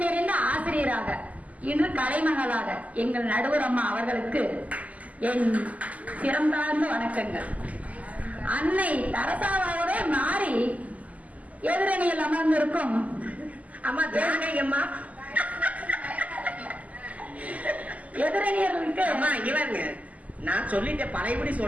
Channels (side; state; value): left; late; 0.073 ms